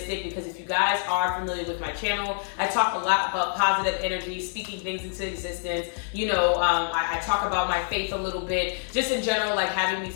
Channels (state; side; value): silent; right; digital silence